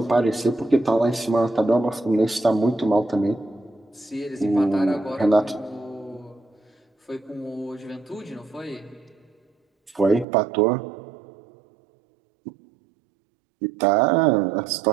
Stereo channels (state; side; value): drops out; left; at 10.2 s